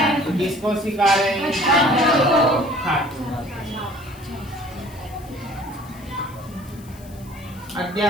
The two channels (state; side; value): noise; left; hiss, 23 dB below the sound